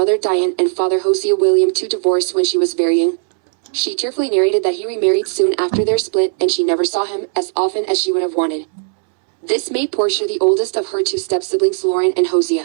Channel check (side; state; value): left; silent; 67 dB below the other